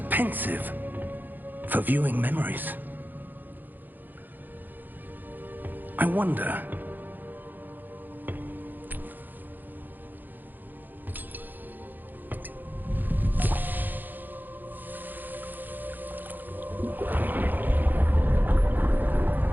pensive for viewing memories. I wonder...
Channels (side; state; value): left; late; 0.087 ms